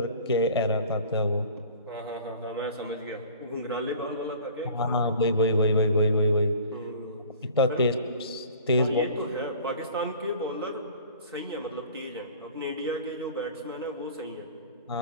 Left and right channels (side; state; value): both; inverted; correlation -0.45